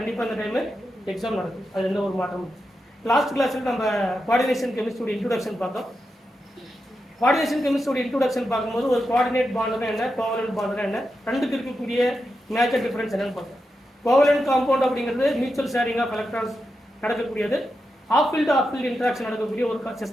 அந்த டைமு எக்ஸாம் நடக்கும், அது எந்த ஒரு மாற்றமும். லாஸ்ட் கிளாஸில் நம்ம கோஆர்டினேஷன் கெமிஸ்ட்ரியோட இன்ட்ரோடக்ஷன் பார்த்தோம். கோஆர்டினேஷன் கெமிஸ்ட்ரியோட இன்ட்ரோடக்ஷன் பார்க்கும்போது ஒரு கோஆர்டினேட் பாண்டுனா என்ன, கோவலன்ட் பாண்டுனா என்ன, ரெண்டுக்கு இருக்கக்கூடிய மேஜர் டிஃபரன்ஸ் என்னன்னு பார்த்தோம். கோவலன்ட் காம்பவுண்ட் அப்படிங்கிறது மியூச்சுவல் ஷேரிங் ஆஃப் எலக்ட்ரான்ஸ் நடக்கக்கூடியது, ஆஃப் ஃபீல்டு இன்ட்ராக்ஷன் நடக்கக்கூடிய ஒரு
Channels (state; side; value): normal; both; correlation 0.88